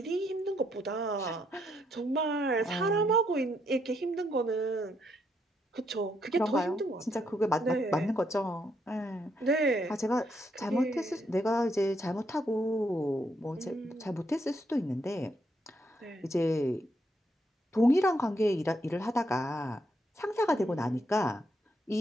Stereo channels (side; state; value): both; normal; correlation 0.76